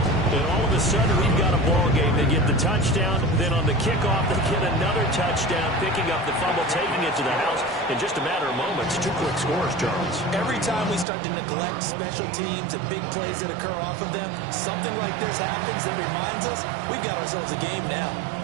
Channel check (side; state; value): left; drops out; at 11.1 s